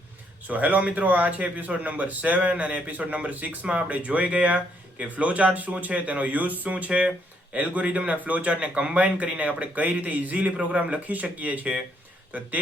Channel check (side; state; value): both; normal; correlation 0.72